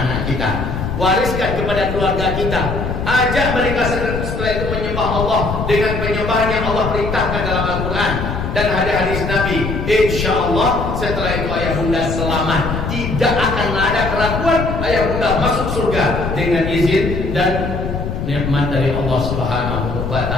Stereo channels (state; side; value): noise; left; rumble, 4 dB below the sound